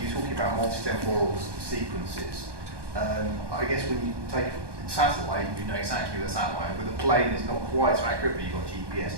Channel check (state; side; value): late; left; 1.2 ms